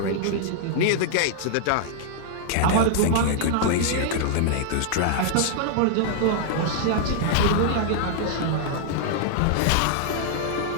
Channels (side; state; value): both; different; correlation -0.01